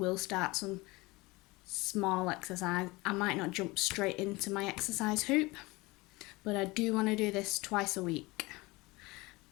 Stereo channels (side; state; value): right; quieter; 22.7 dB